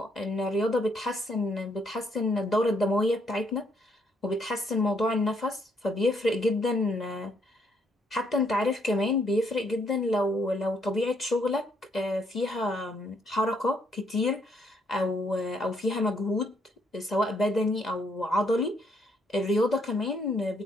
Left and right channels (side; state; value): both; normal; correlation 0.72